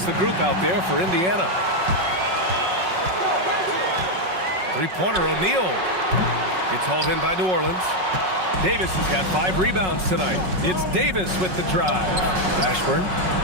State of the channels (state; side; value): late; left; 5.4 ms